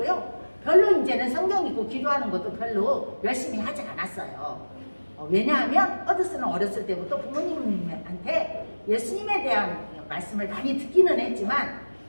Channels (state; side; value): inverted; both; correlation -1.00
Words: 별로 이제는 성경 읽고 기도하는 것도 별로 열심히 하지 않았어요. 왜냐하면 허드슨은 어렸을 때부터 부모님한테 예수님에 대한 말씀을 많이 듣기는 했지만